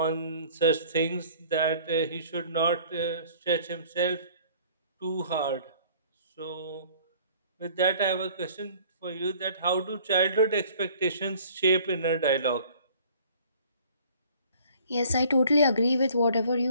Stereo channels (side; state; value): both; inverted; correlation -0.53